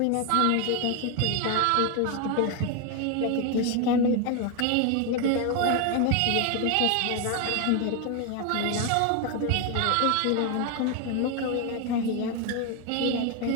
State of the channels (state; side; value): different; both; correlation 0.01